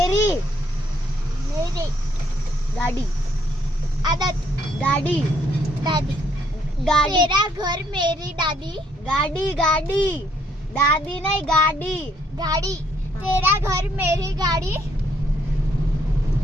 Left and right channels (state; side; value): normal; both; correlation 0.69